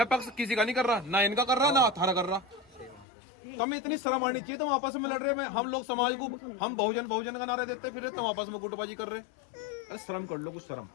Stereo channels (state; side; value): drops out; right; at 3.1 s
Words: पक्ष किसी का नहीं कर रहा, ना इनका कर रहा, ना थारा कर रहा। तुम्हें इतनी शर्म आनी चाहिए, तुम आपस में लड़ रहे हैं। हम लोग समाज को, हम बहुजन का नारे देते फिर तुम आपस में गुटबाजी कर रहे। अरे शर्म कर लो, कुछ शर्म,